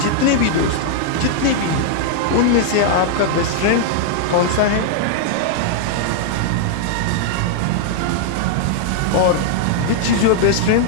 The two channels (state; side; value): different; both; correlation -0.01